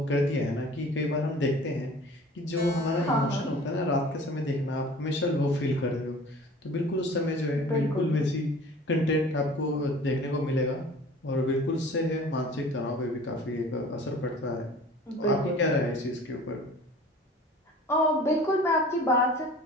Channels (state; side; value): normal; both; correlation 0.44